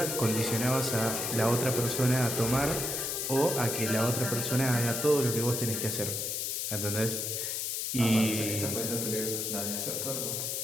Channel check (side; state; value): left; noise; hiss, 1 dB below the sound